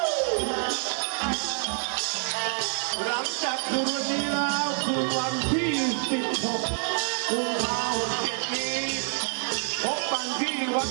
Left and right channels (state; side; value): silent; left; 60 dB below the other